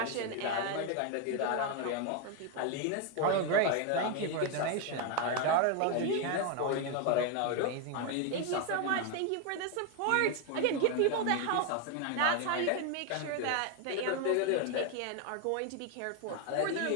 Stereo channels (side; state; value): both; different; correlation 0.01